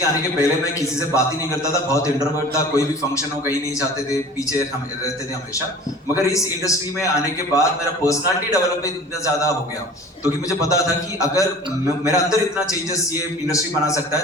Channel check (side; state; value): both; normal; correlation 0.43